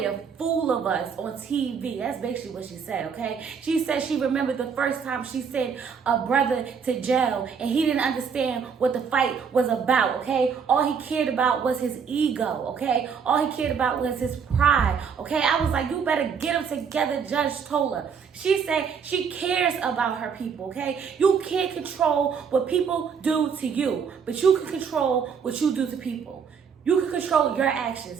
a fool of us on TV. That's basically what she said, okay? She said she remembered the first time she sent a brother to jail and he didn't understand what the fight was about, okay? All he cared about was his ego, okay? All he cared about was his pride, okay? I was like, you better get them together, Judge Toller. She said she cares about her people, okay? You can't control what people do to you, but you can control what you do to people. You can control your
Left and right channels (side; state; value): left; quieter; 6.5 dB